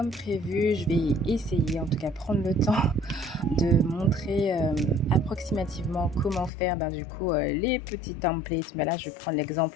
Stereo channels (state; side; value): drops out; right; at 6.5 s